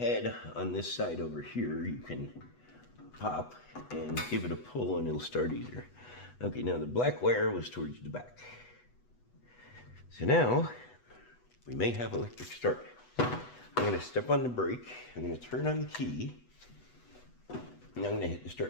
on this side over here. You can pop and give it a pull and it'll start easier. Okay, now the black wire was towards the back. So now we may have electric start. I'm going to step on the brake, I'm going to turn on the key, and I'm going to hit the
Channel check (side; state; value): right; late; 8.1 ms